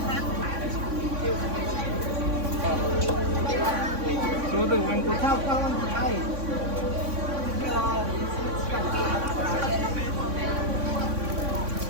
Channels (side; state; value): left; late; 3.6 ms